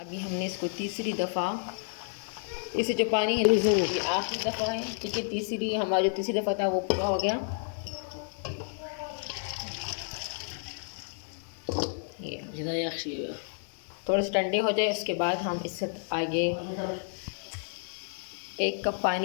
हमने इसको तीसरी दफ़ा, इसे जो पानी है ये आखिरी दफ़ा है, ठीक है। तीसरी हमारा जो तीसरी दफ़ा था वो पूरा हो गया। ये थोड़े से ठंडे हो जाए उसके बाद हम इससे आगे 1 कप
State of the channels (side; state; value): right; silent; digital silence